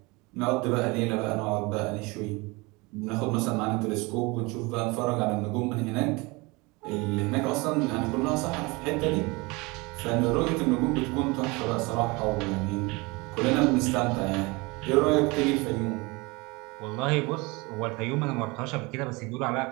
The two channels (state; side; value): quieter; left; 25.5 dB